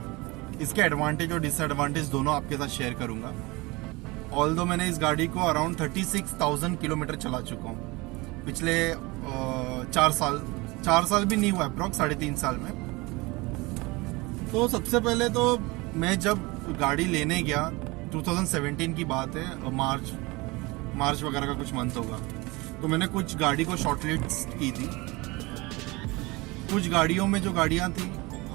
इसके एडवांटेज और डिसएडवांटेज दोनों आपके साथ शेयर करूंगा। ऑल्दो मैंने इस गाड़ी को अराउंड 36,000 किलोमीटर चला चुका हूँ पिछले 4 साल भी नहीं हुआ, अप्रॉक्स 3.5 साल में। तो सबसे पहले तो मैं जब गाड़ी लेने गया 2017 की बात है, मार्च वगैरह का कुछ मंथ होगा, तो मैंने कुछ गाड़ी को शॉर्टलिस्ट की थी। कुछ गाड़ियों में जो गाड़ियां थी,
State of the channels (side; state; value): left; quieter; 23.8 dB